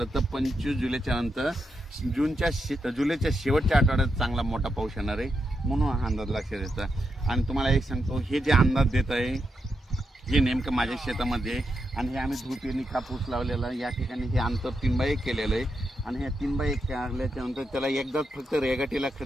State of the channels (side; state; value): both; normal; correlation 0.84